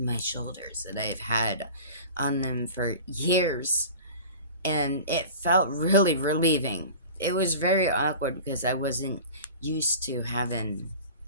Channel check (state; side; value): inverted; both; correlation -0.39